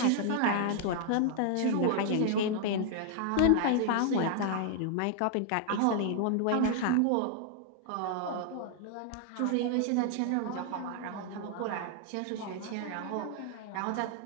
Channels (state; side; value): different; both; correlation 0.00